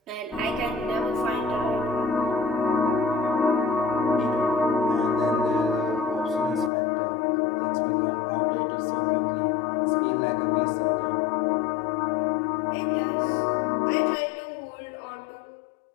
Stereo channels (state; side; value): drops out; right; at 6.7 s